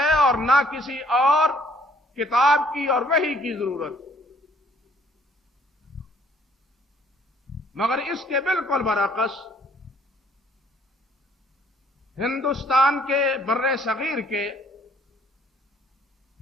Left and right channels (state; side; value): normal; both; correlation 0.62